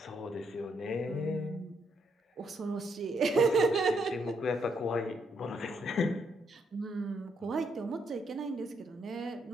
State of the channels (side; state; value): both; normal; correlation 0.75